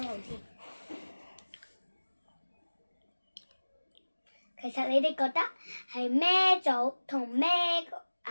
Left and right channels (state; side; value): inverted; both; correlation -1.00